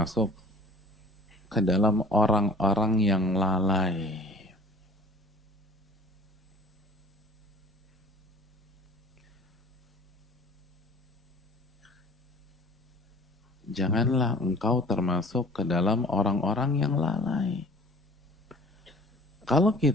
ke dalam orang-orang yang lalai. Janganlah engkau termasuk ke dalam orang-orang yang lalai. Kalau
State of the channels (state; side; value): normal; both; correlation 0.48